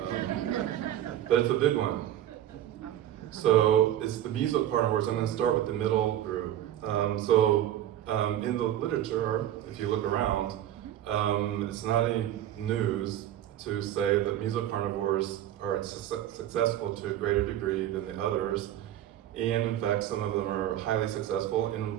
but it's a big one. So it's the mesocarnivores. I'm going to start with the middle group. In the literature, if you look around, it's not any news to say that mesocarnivores are successful to a greater degree than the others, and in fact some of them are highly successful,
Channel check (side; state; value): left; quieter; 12.0 dB